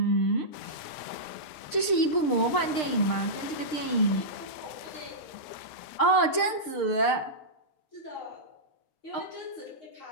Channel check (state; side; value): late; right; 6.6 ms